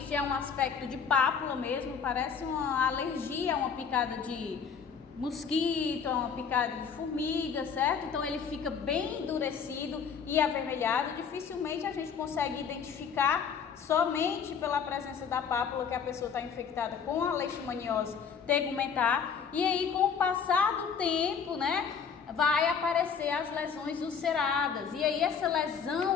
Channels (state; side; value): quieter; right; 6.5 dB